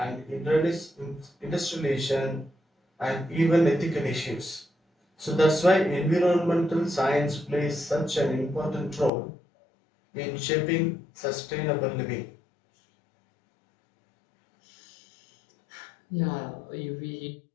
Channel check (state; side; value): drops out; right; at 9.1 s